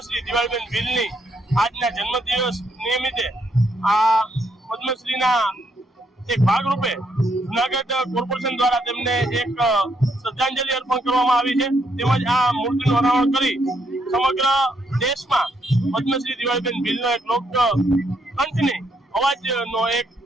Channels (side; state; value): both; normal; correlation 0.74